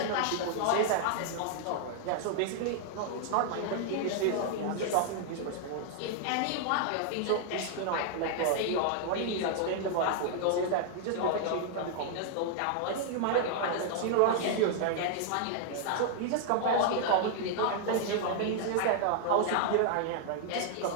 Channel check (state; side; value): different; both; correlation -0.01